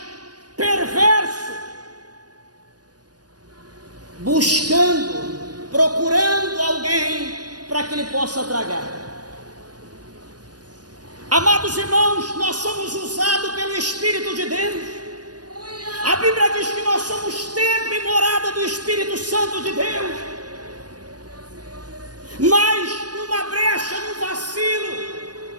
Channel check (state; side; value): late; left; 0.69 ms